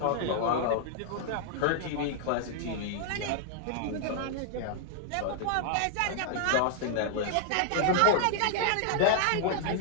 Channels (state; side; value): different; both; correlation -0.01